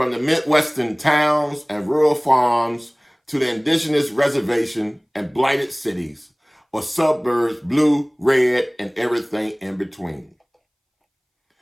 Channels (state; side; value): identical; both; correlation 1.00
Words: the Midwestern towns and rural farms to the indigenous reservation and blighted cities, or suburbs, blue, red, and everything in between.